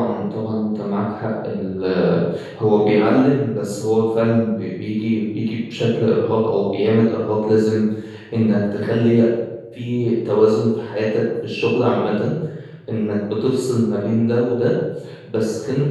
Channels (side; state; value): both; identical; correlation 1.00